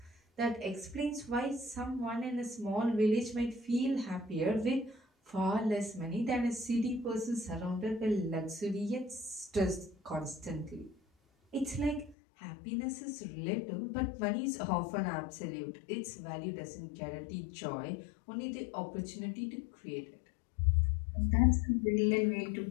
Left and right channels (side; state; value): right; drops out; at 12.2 s